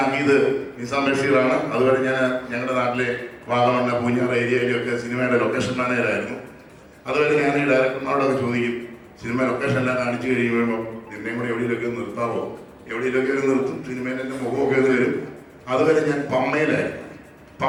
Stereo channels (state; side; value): identical; both; correlation 1.00